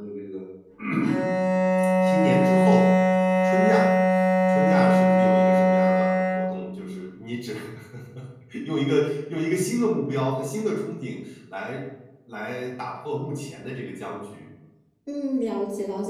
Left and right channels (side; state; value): both; identical; correlation 1.00